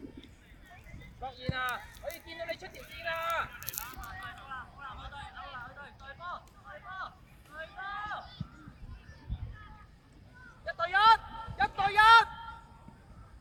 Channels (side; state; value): both; identical; correlation 1.00